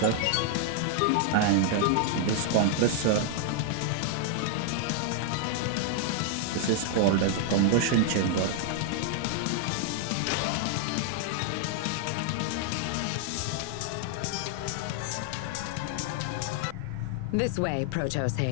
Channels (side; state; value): both; different; correlation 0.00